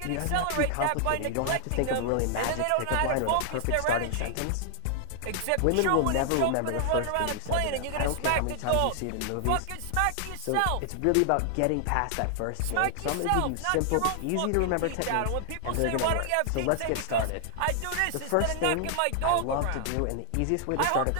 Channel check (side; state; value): both; different; correlation 0.00